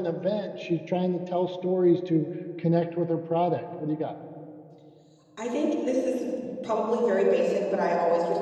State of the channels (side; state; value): both; identical; correlation 1.00